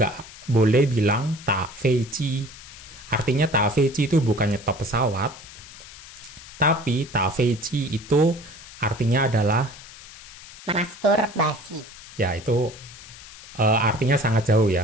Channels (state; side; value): noise; left; hiss, 17 dB below the sound